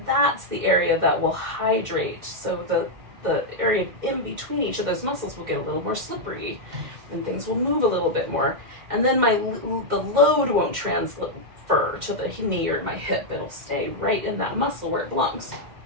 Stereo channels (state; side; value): late; left; 2.1 ms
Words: that's the area that will hydrate. So the area in between each of those muscles will get a little more slippery, and things will move a little bit more. And then the load won't transfer to the knee or my hip. It'll stay right in that muscle where it belongs.